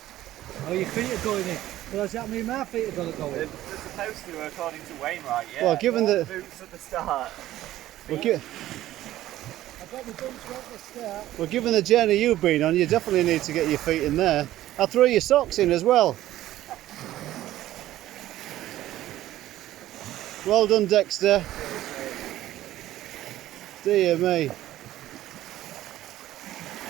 Oh, your feet are going in. Well, does that mean my feet are going to go in? They're supposed to, according to Wainwright. Yeah. Well, given the boots at the start. I've got my boots right at the start. Well, given the journey you've been on, you definitely need to get your feet in there. I'll throw your socks in as well. Well done, Dexter. Dear me.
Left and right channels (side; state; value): left; quieter; 14.3 dB